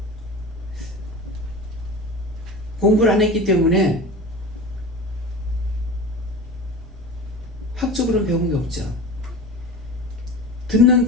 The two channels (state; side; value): normal; both; correlation 0.33